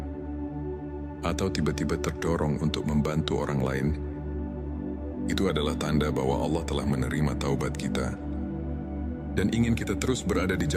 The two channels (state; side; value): identical; both; correlation 1.00